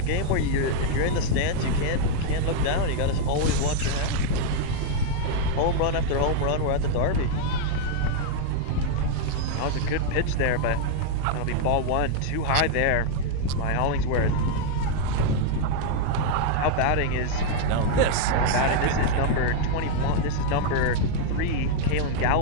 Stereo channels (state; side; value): different; both; correlation 0.00